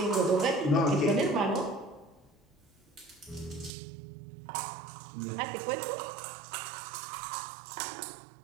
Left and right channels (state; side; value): drops out; left; at 3.7 s